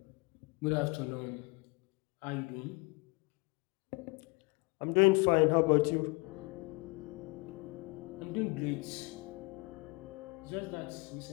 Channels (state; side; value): quieter; right; 28.3 dB